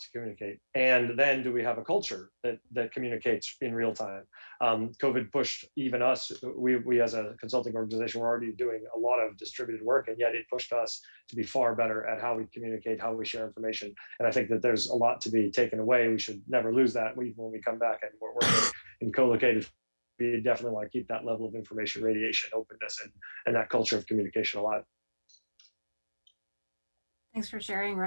communicate? And then do we have a culture that communicates in real time? COVID pushed even us, we as a consulting organization, we're already doing a lot of distributed work, and yet it pushed us to be far better at how we communicate, how we share information. And I think that there's a lot to be taken away. We should never lose that. When we come back and we're working in co-located, we definitely want to keep that level of information radiation, openness, and that culture of communication alive. Thanks for sharing,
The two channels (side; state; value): both; inverted; correlation -1.00